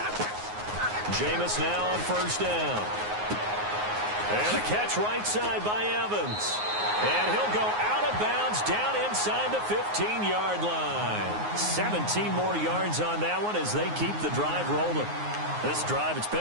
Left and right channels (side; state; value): left; late; 9.5 ms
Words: Jameis now on first down. And a catch right side by Evans. And he'll go out of bounds down inside the 15-yard line. 17 more yards on that one as they keep the drive rolling. This drive, it's